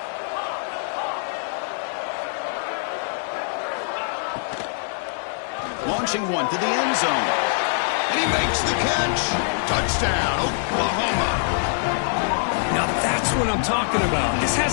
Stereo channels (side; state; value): right; silent; 63 dB below the other